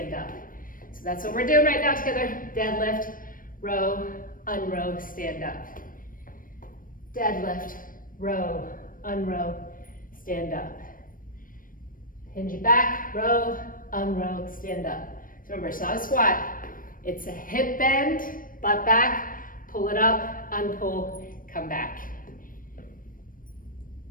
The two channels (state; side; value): late; right; 0.40 ms